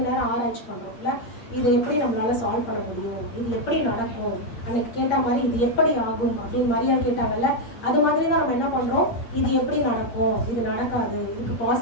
நேரம் ஆராய்ச்சி பண்ணுறோம் இல்லை, இதை எப்படி நம்மளால சால்வ் பண்ண முடியும், இது எப்படி நடக்கும், அன்னைக்கு கேட்ட மாதிரி இது எப்படி ஆகும் அப்படின்னு மரியாதை கேட்டாங்கல்ல, அது மாதிரி தான் நம்ம என்ன பண்ணுறோம், இது எப்படி நடக்கும், இது நடக்காது, இதுக்கு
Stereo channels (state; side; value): late; right; 8.6 ms